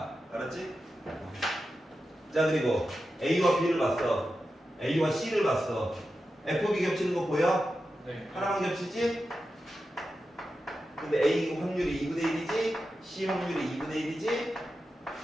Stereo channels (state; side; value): normal; both; correlation 0.91